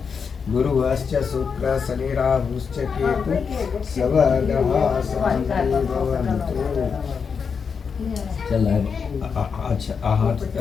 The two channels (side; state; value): right; quieter; 6.0 dB